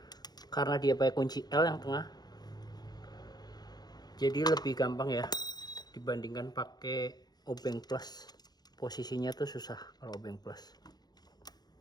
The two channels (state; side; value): late; right; 0.19 ms